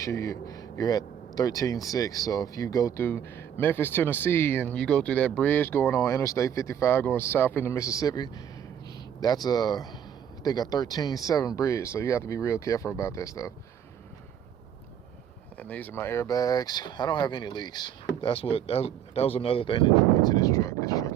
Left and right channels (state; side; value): quieter; left; 9.2 dB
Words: you're at 13.6. So if you go through Memphis, Tennessee, and you go through that bridge going on Interstate 55 going south into Mississippi, that's I think a 13.7 bridge. So you have to be real careful about that stuff. And these are my airbags. I don't have any leaks. That was another thing that drew me to this truck. This truck